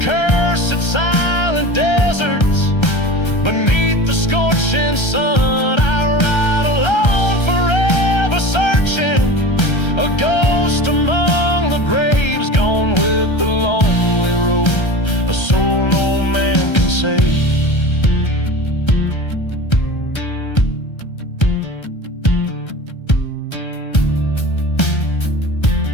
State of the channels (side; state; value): right; late; 1.3 ms